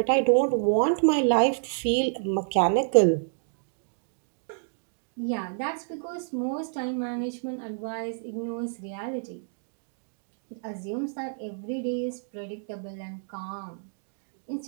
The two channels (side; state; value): left; silent; digital silence